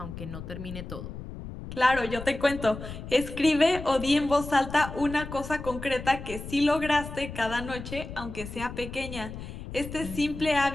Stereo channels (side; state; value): left; noise; rumble, 10 dB below the sound